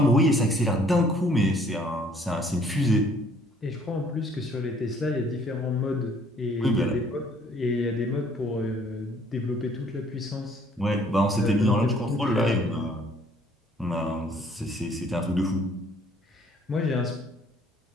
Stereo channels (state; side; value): normal; both; correlation 0.60